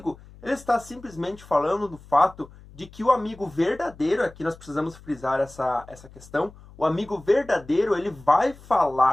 ele está simplesmente falando do fato de que o amigo verdadeiro, aqui nós precisamos frisar essa questão, o amigo verdadeiro, ele vai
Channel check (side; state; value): left; noise; hum, 21 dB below the sound